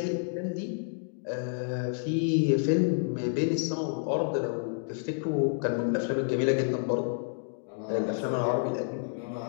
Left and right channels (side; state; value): right; silent; digital silence